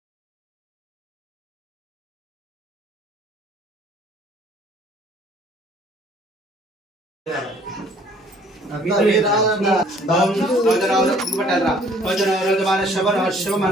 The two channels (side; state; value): both; normal; correlation 0.58